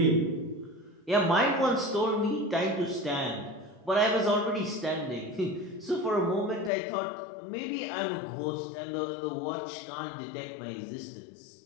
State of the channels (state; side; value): drops out; right; at 6.7 s